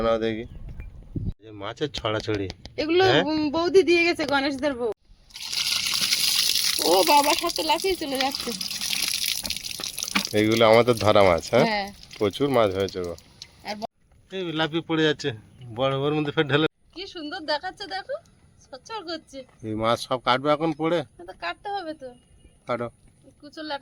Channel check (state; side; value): identical; both; correlation 1.00